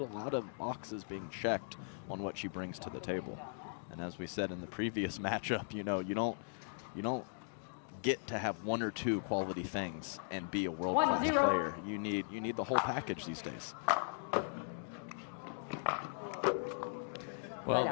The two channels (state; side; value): silent; right; digital silence